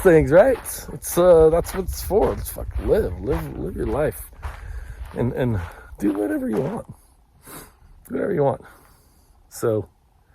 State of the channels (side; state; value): both; identical; correlation 1.00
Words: things, right? It's that's what it's for. It's fucking live your life, and do whatever you want. Do whatever you want. So,